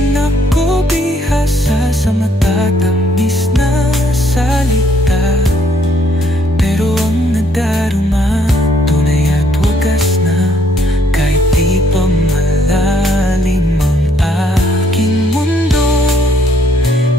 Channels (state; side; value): normal; both; correlation 0.68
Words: ako bihasa sa matatamis na salita, pero ang nadarama tunay at wagas na. Kahit di pa malalim ang aking mundo,